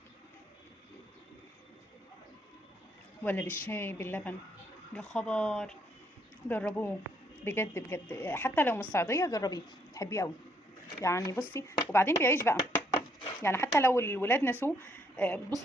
ولا بالشاي باللبن، يا خبر، جربوه بجد بجد، حتى لو مش صعيدية جربيه تحبيه قوي. يعني بصي، وبعدين بيعيش بقى، يعني حتى لو الولاد نسوه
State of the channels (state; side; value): normal; both; correlation 0.71